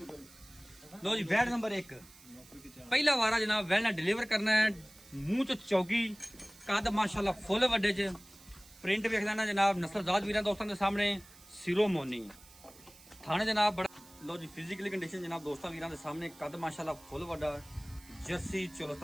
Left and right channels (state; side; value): noise; right; hiss, 22 dB below the sound